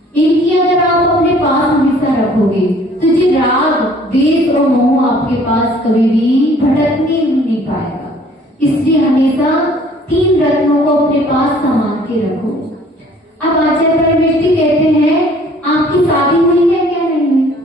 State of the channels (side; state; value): both; normal; correlation 0.56